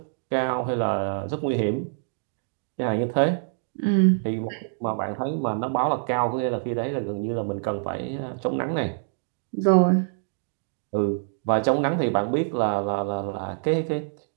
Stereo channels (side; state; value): left; silent; 61 dB below the other